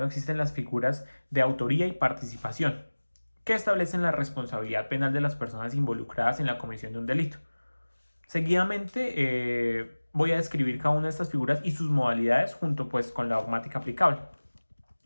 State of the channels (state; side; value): inverted; both; correlation -1.00